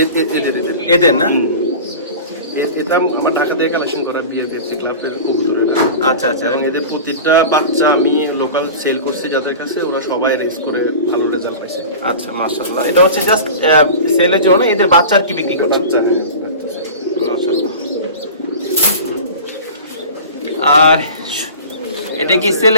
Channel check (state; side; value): inverted; both; correlation -0.34